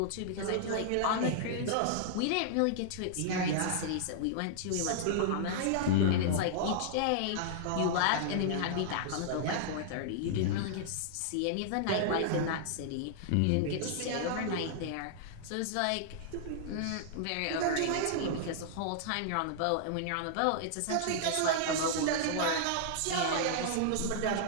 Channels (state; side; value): different; both; correlation -0.01